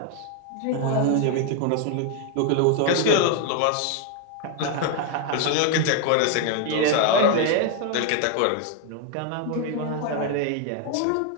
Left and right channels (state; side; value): different; both; correlation 0.01